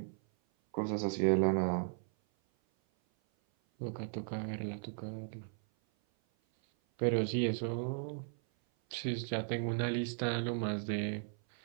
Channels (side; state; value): left; silent; 54 dB below the other